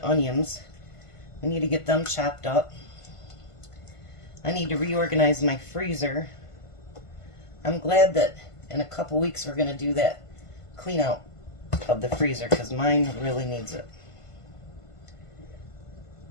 onions. We need to get them chopped up. I need to reorganize my freezer. I'm glad that in a couple weeks we're going to do that clean out of the freezer, because mine really needs it.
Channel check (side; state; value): right; late; 1.5 ms